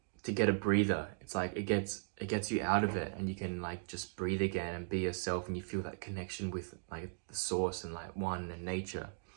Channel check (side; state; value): left; silent; digital silence